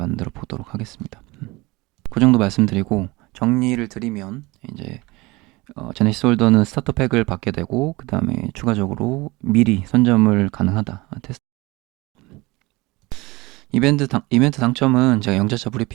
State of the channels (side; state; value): left; quieter; 22.5 dB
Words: 보도록 하겠습니다. 그 정도 말씀드리고 정리를 드리면 이제 제네시스 홀더는 스타터 팩을 받게 되고 그 다음에 추가적으로 미리 선점을 가능하다 테스트 이벤트 당첨은 제가 영자차